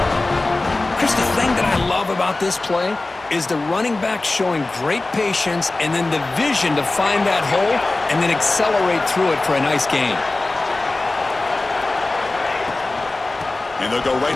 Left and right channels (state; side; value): quieter; right; 3.1 dB